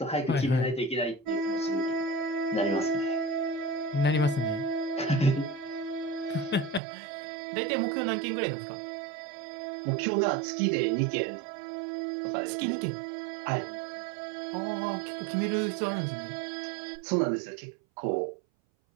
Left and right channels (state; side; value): drops out; left; at 6.8 s